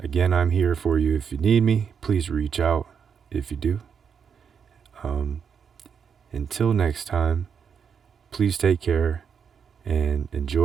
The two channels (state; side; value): quieter; left; 6.9 dB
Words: again, I'm here for you. If you need me, please reach out if you do. Until next time, please take care and